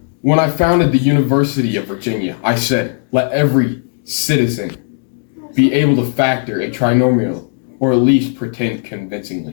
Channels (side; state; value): right; silent; digital silence